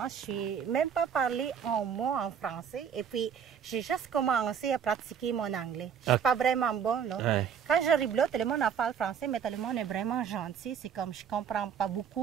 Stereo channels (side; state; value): left; quieter; 7.7 dB